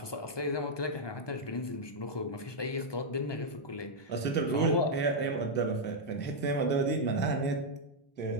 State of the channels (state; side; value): late; right; 1.2 ms